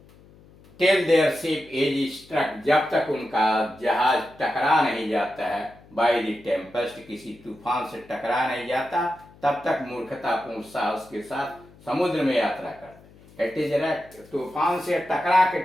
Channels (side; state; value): left; noise; hum, 25 dB below the sound